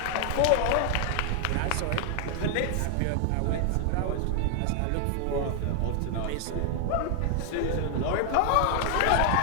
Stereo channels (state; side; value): different; both; correlation 0.00